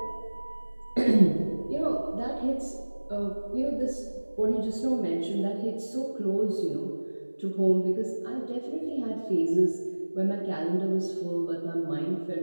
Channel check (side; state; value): both; inverted; correlation -1.00